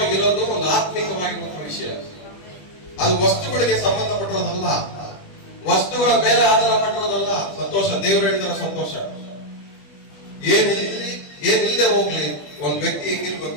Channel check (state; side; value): late; right; 20 ms